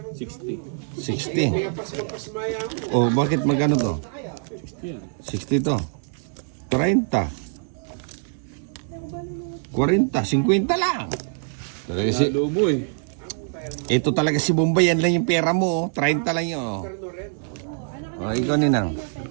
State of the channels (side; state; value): left; silent; digital silence